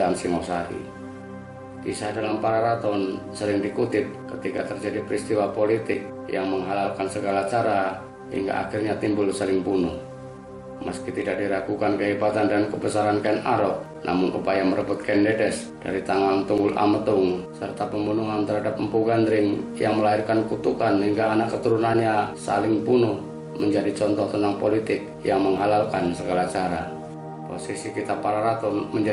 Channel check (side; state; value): both; identical; correlation 1.00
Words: Singosari. Kisah dalam Pararaton sering dikutip ketika terjadi peristiwa politik yang menghalalkan segala cara hingga akhirnya timbul saling bunuh. Meski tidak diragukan kehebatan dan kebesaran Ken Arok, namun upaya merebut Ken Dedes dari tangan Tunggul Ametung serta pembunuhan terhadap Empu Gandring yang melahirkan kutukan hingga anak keturunannya saling bunuh menjadi contoh tentang politik yang menghalalkan segala cara. Posisi Kitab Pararaton